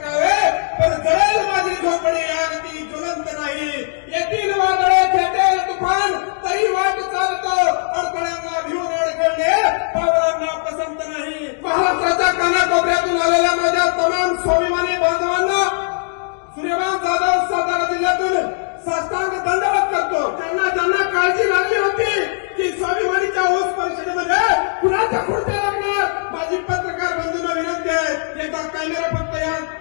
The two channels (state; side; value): silent; right; digital silence